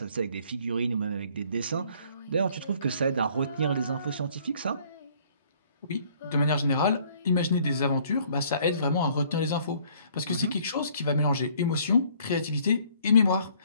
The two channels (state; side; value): inverted; both; correlation -0.60